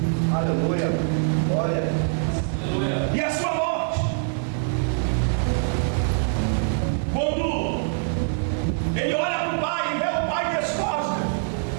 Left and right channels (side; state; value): left; silent; digital silence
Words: Aleluia. Glória. E a sua morte, quando ele olha para o Pai e vê o Pai descosta,